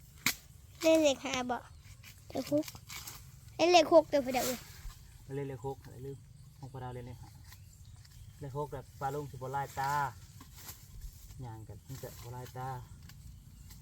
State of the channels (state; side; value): identical; both; correlation 1.00